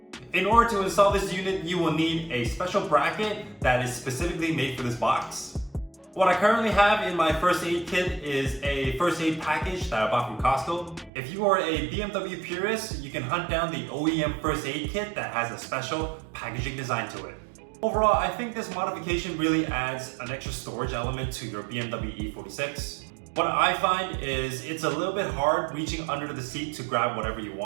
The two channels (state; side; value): drops out; left; at 11.1 s